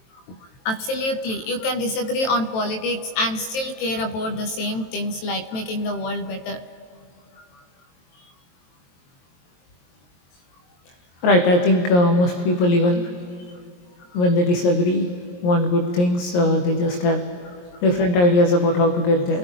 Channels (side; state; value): right; late; 23 ms